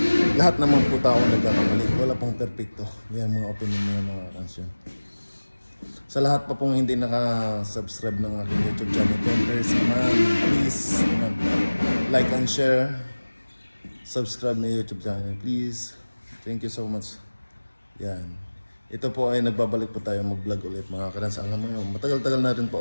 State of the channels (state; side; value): inverted; both; correlation -1.00